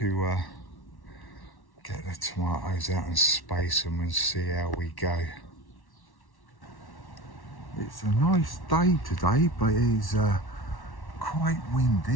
get the tomatoes out and space them and see how we go. It's a nice day today, but it's quite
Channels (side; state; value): right; late; 1.1 ms